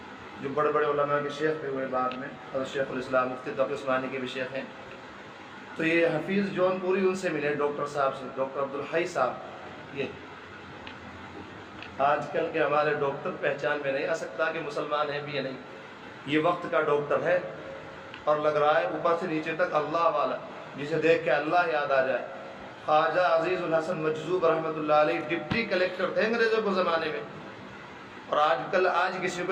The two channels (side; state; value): both; identical; correlation 1.00